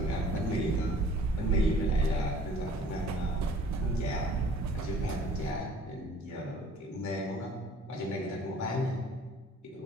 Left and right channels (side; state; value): both; normal; correlation 0.53